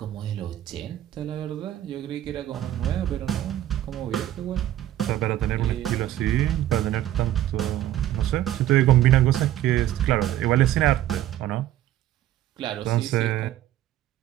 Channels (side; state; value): left; quieter; 12.9 dB